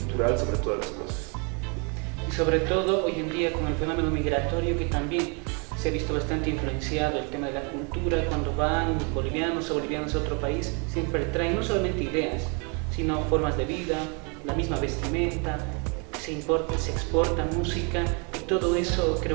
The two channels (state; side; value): quieter; left; 34.6 dB